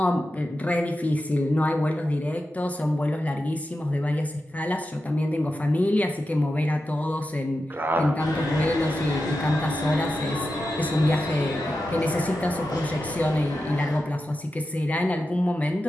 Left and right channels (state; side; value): normal; both; correlation 0.90